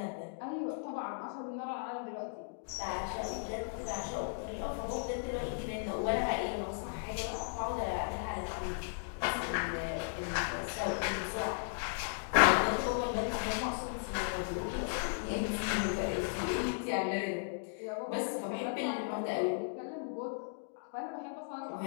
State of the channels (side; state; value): right; silent; digital silence